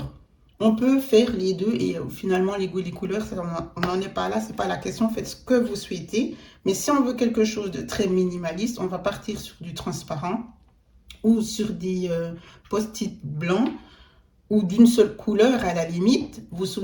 on peut faire les deux et finalement, les goûts et les couleurs, on n'en est pas là. Ce n'est pas la question. Faites ce que vous souhaitez. Mais si on veut quelque chose de très minimaliste, on va partir sur du transparent ou sur des post-it blancs ou d'une seule couleur à la limite. Vous vous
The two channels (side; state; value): both; identical; correlation 1.00